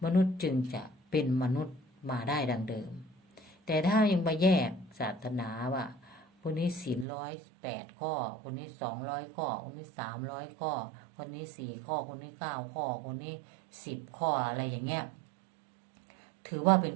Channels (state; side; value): drops out; left; at 7.1 s